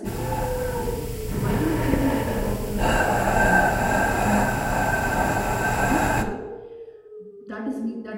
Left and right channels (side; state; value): both; identical; correlation 1.00